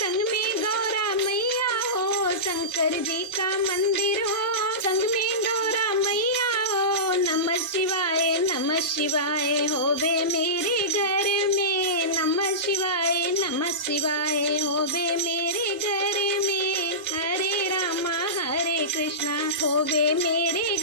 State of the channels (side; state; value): both; normal; correlation -0.19